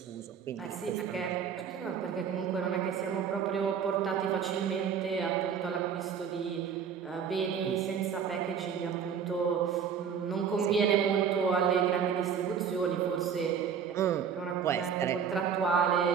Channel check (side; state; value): left; quieter; 7.3 dB